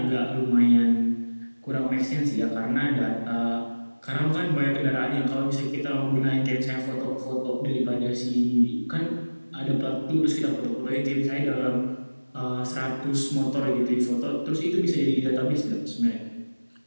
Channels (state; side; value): inverted; both; correlation -1.00